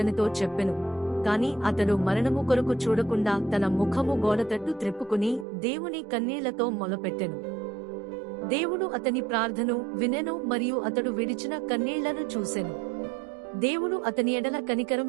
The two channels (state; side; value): drops out; left; at 5.5 s